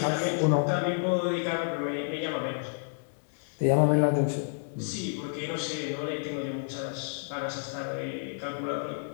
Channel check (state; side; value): silent; right; digital silence